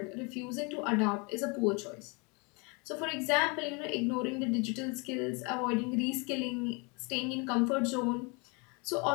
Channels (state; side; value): quieter; right; 30.9 dB